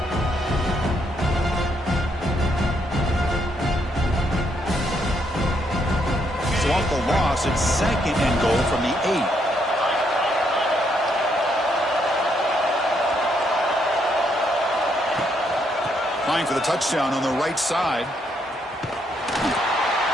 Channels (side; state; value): both; normal; correlation 0.75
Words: So off the loss, it's 2nd and goal from the 8. Flying for the touchdown on the right side.